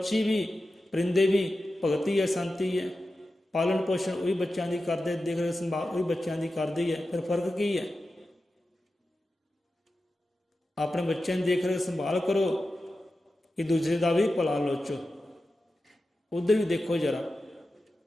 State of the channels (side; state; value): both; normal; correlation 0.92